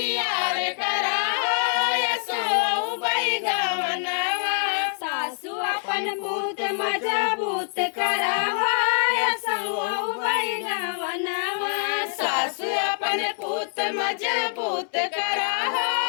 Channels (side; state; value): right; silent; 62 dB below the other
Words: करा वही गवनवा सासू अपन पुत मजबूत करा वही गवनवा सासु अपन पूत मजबूत करा